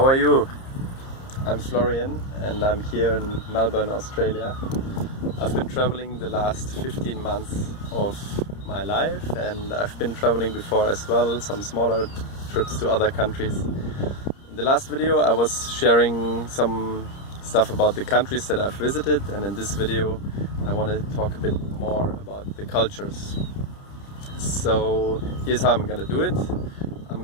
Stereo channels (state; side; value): late; right; 30 ms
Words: are you? I'm Florian and I'm here in Melbourne, Australia. I've been traveling the last 15 months of my life, and I've been traveling before as well, some smaller trips to other countries. In the last video I was sharing some stuff about the countries that I've visited, and in this video I want to talk a bit more about the cultures. So here's how I'm gonna do it. I'm